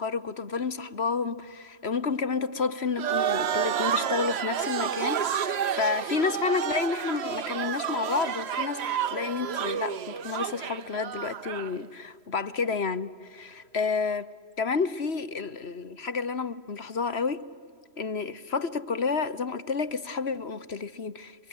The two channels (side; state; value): right; late; 3.0 ms